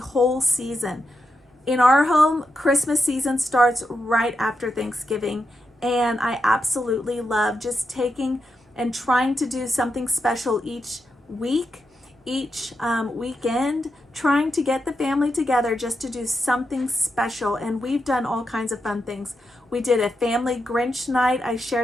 season. In our home, Christmas season starts right after Thanksgiving, and I absolutely love just taking and trying to do something special each week, each weekend, trying to get the family together just to do something special. And we've done all kinds of fun things. We did a family Grinch night. I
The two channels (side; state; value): both; normal; correlation 0.86